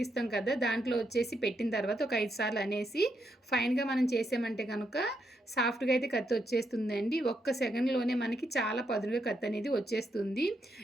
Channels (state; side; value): normal; both; correlation 0.80